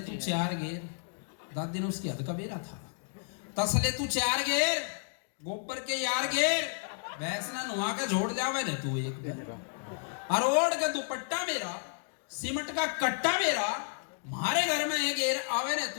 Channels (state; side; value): silent; right; digital silence